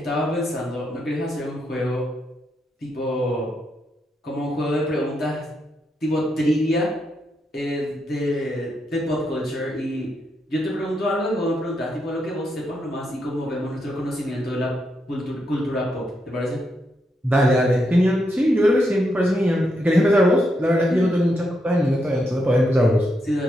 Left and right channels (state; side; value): normal; both; correlation 0.81